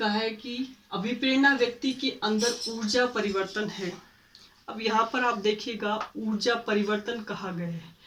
है कि अभिप्रेरणा व्यक्ति के अंदर ऊर्जा परिवर्तन है। अब यहाँ पर आप देखिएगा, ऊर्जा परिवर्तन कहा गया है,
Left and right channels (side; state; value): both; identical; correlation 1.00